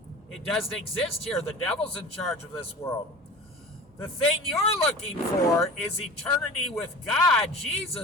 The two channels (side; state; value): both; normal; correlation 0.37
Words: It doesn't exist here. The devil's in charge of this world. The thing you're looking for is eternity with God,